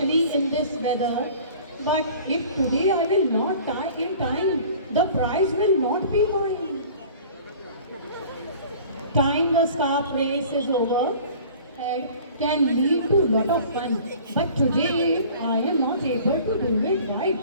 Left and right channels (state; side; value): inverted; both; correlation -0.46